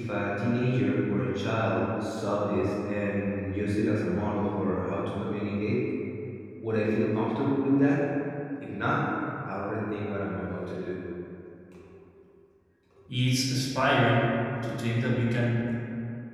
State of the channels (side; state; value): both; identical; correlation 1.00